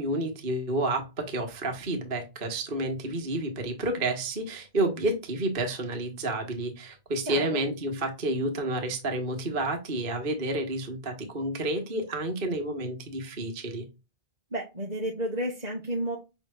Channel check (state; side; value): late; left; 2.5 ms